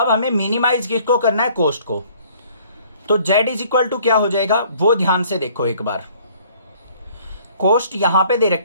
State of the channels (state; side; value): inverted; both; correlation -0.57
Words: हमें मिनिमाइज किसको करना है, कॉस्ट को। तो Z इज इक्वल टू क्या हो जाएगा, वो ध्यान से देखो एक बार। कॉस्ट यहां पे दे